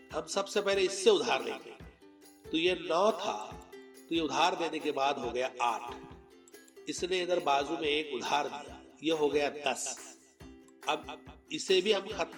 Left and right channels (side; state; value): both; identical; correlation 1.00